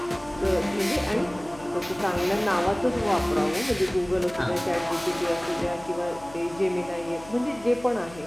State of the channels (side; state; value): left; noise; hum, 19 dB below the sound